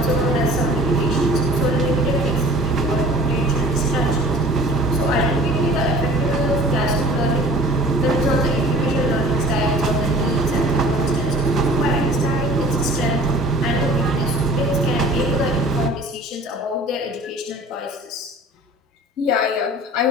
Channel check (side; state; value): both; normal; correlation 0.46